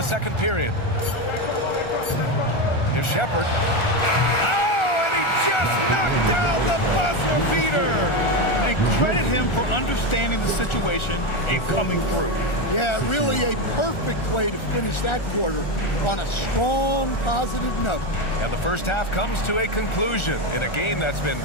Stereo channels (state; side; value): late; right; 1.4 ms